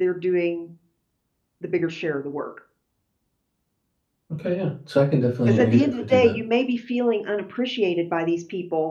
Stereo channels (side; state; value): both; identical; correlation 1.00